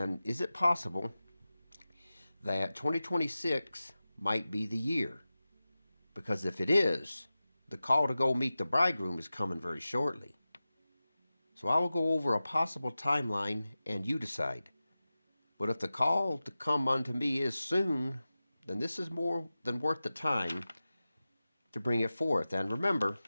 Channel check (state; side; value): inverted; both; correlation -0.95